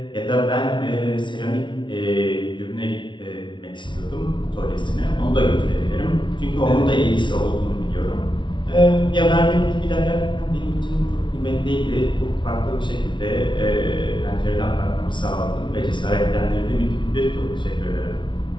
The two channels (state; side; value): late; right; 0.24 ms